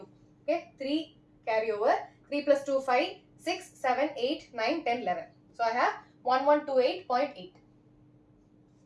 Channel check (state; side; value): identical; both; correlation 1.00